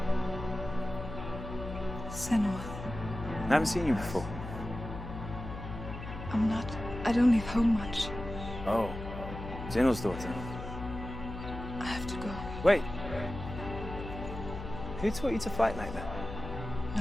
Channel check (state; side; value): noise; left; hum, 9 dB below the sound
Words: Senua. I haven't seen you before. I'm not. I don't leave home much. Oh, Zeno's daughter. I have to go. Wait. Who taught you to fight like that?